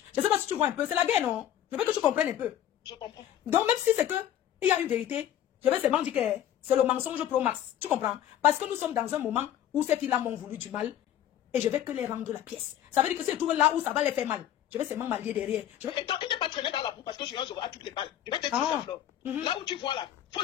Je ne sais pas si tu vois un peu, c'est la guerre, non? Je veux que tu comprennes un peu. Je comprends. Donc, même si c'est que il y a une vérité, je vais seulement dire que c'est le mensonge pro max. Tu comprends? Parce que nous sommes dans un moment où ces filles-là m'ont voulu du mal. et je vais que les rendre la pièce. Ça veut dire que si je trouve là où ça va les faire mal, je vais seulement m'allier derrière. Je vais... Et toi, tu n'es pas traîné dans la boue parce que Julien Zogo a toutes les balles. Je vais te dire ça, Flore. Là où tu vois là, faut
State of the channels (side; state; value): right; quieter; 11.3 dB